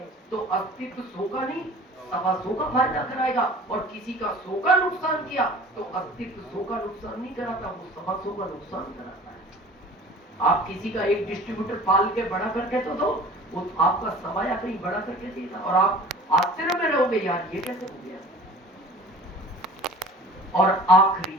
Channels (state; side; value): normal; both; correlation 0.44